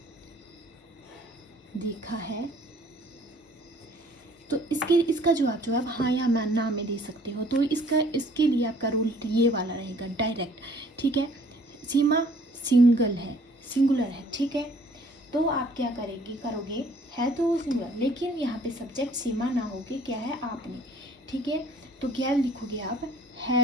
देखा है। तो इसका जवाब जो आप हाँ या ना में दे सकते हो। तो इसके लिए आपका रूल ये वाला रहेगा डायरेक्ट। ठीक है, सीमा सिंगल है, सिंगुलर है, ठीक है। तो आप क्या करोगे, है तो वो सिंगुलर, लेकिन यहाँ पे सब्जेक्ट सीमा ना होके क्या है, आपने, ठीक है। तो क्या लिखोगे आप,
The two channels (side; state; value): both; normal; correlation 0.57